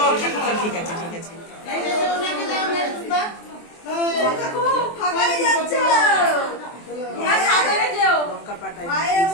ঠিক আছে ঠিক আছে। লঙ্কা পাটাই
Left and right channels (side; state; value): right; late; 23 ms